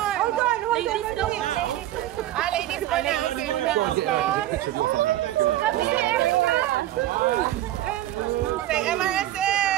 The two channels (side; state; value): left; quieter; 13.9 dB